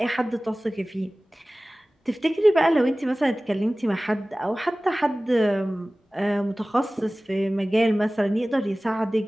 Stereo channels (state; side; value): normal; both; correlation 0.98